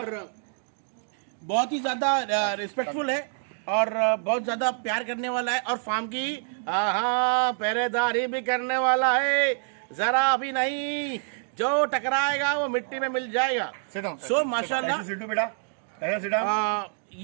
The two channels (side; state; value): left; silent; 60 dB below the other